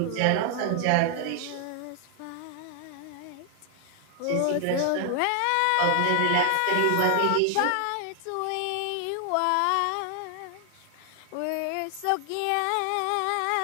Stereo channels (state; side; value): different; both; correlation 0.00